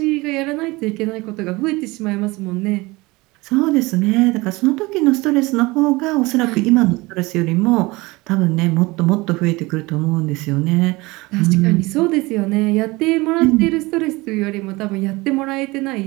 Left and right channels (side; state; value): left; quieter; 22.5 dB